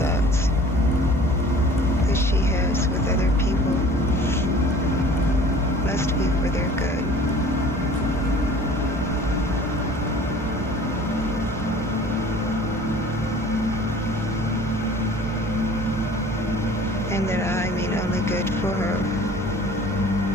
that she has with other people must be for their good. And that I mean only good for her.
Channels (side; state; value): both; normal; correlation 0.47